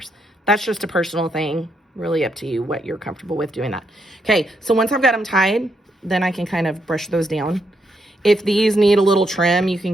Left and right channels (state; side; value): normal; both; correlation 0.79